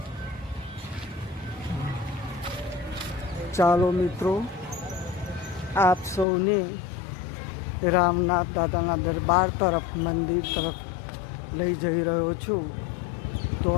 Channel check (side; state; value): right; drops out; at 6.2 s